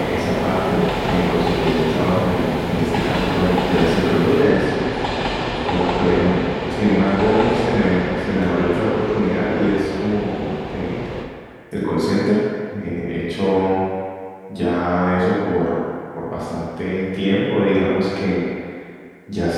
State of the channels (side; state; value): both; identical; correlation 1.00